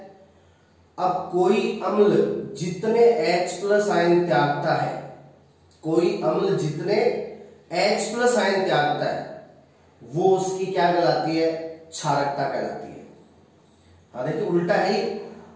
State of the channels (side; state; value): both; identical; correlation 1.00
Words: अब कोई अम्ल जितने H+ आयन त्यागता है, कोई अम्ल जितने H+ आयन त्यागता है वो उसकी क्या कहलाती है? क्षारकता कहलाती है। हाँ देखिए, उल्टा है,